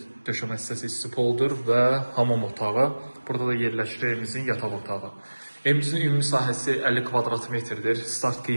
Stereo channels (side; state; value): both; inverted; correlation -1.00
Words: döşəmə hissəsi isti poldur və hamam otağı. Burada da yerləşir evimizin yataq otağı. Evimizin ümumi sahəsi 50 kvadrat metrdir. Start